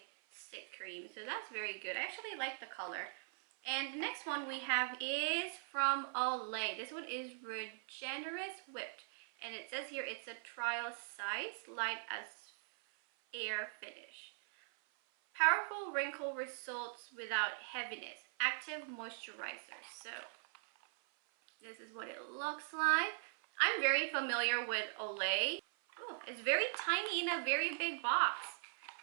cream. So that's very good. I actually like the color. And the next one we have is from Olay. This one is Regenerous Whipped. And it says here it's a trial size, light as air finish. Powerful wrinkle results without heaviness. Active moisturizer. So this is what it looks like. I'm very familiar with Olay. Oh, it's very tiny in a very big box.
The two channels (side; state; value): left; silent; 50 dB below the other